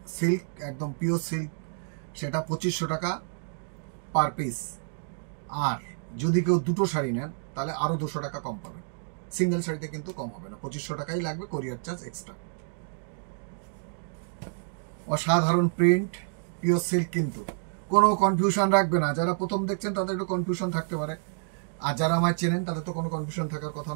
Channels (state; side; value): silent; left; digital silence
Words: সিল্ক, একদম পিওর সিল্ক, সেটা 2500 টাকা পার পিস। আর যদি কেউ দুটো শাড়ি নেন তাহলে আরও 200 টাকা কম পাবেন। সিঙ্গেল শাড়িতে কিন্তু কম হবে না, 2500 টাকাই লাগবে, কোরিয়ার চার্জ এক্সট্রা। অসাধারণ প্রিন্ট, পিওর সিল্ক, কিন্তু কোনো কনফিউশন রাখবে না। যারা প্রথম দেখছেন তাদের একটু কনফিউশন থাকতে পারে, আর যারা আমায় চেনেন তাদের তো কোনো কনফিউশন থাকার কথা